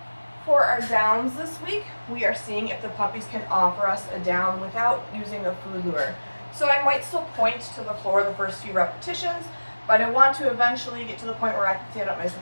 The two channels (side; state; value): both; inverted; correlation -1.00